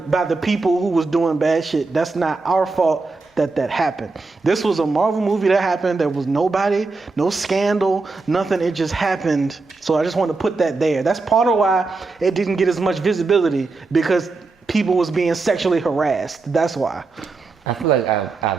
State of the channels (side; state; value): left; quieter; 3.8 dB